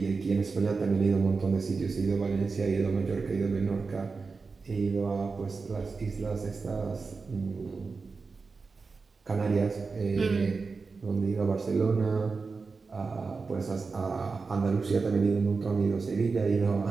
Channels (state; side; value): quieter; left; 4.5 dB